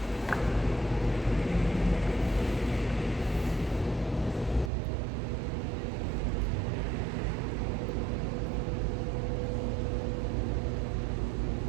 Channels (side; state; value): left; drops out; at 4.7 s